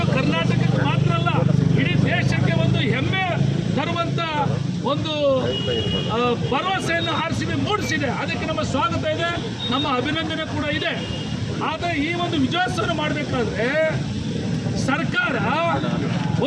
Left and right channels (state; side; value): identical; both; correlation 1.00